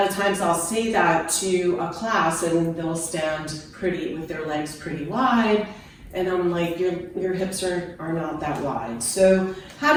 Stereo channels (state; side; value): identical; both; correlation 1.00